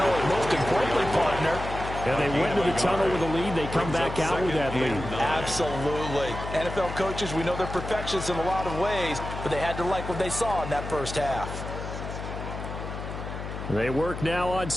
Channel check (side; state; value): left; noise; hum, 7 dB below the sound